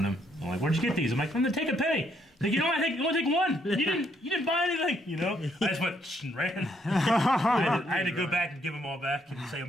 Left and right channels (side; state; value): both; normal; correlation 0.72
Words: them. I'm like, "Where'd you get these?" I'm like, "I'm gonna take a penny." Like, you know what? I only take one. You didn't buy anything. You know? I just went and ran. I had to go back and give them all back and say